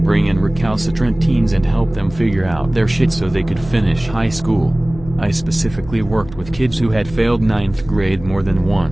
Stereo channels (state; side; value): noise; left; hum, 16 dB below the sound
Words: in recalcitrant teens and help them figure out their shit so they could finish high school. I specifically worked with kids who had failed 9th grade more than